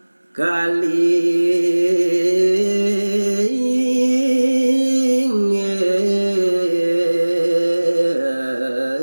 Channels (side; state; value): both; inverted; correlation -1.00